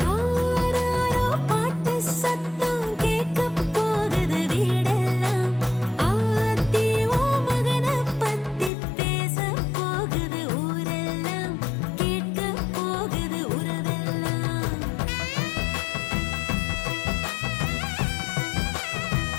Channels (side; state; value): right; drops out; at 8.7 s